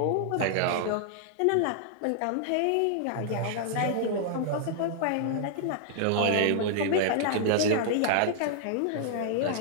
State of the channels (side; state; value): both; different; correlation -0.01